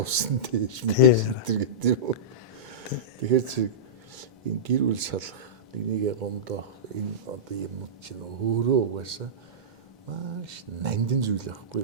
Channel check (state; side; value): normal; both; correlation -0.16